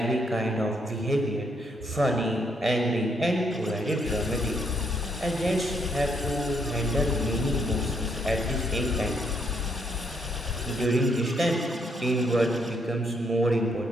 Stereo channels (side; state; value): both; normal; correlation 0.73